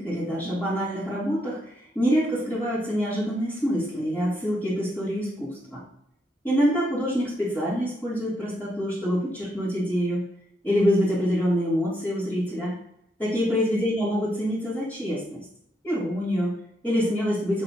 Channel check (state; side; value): normal; both; correlation 0.78